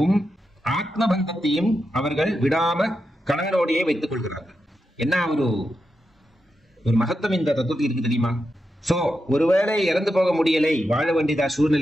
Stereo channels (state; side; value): normal; both; correlation 0.87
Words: ஆத்மபந்தத்தையும் அவர்கள் விடாம கணவனோடையே வைத்துக் கொள்கிறார்கள். என்ன ஒரு மகத்துவம் இந்த தத்துவத்தில் இருக்கு தெரியுமா? சோ ஒருவேளை இறந்து போக முடியலை, வாழ வேண்டியதா